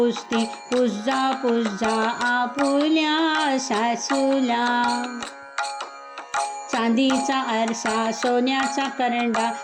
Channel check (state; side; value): identical; both; correlation 1.00